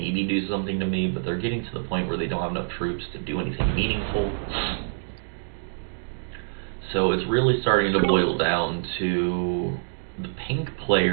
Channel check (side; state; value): left; silent; digital silence